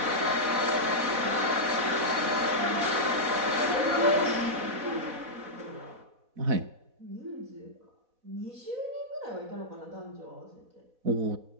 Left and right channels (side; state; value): left; late; 4.1 ms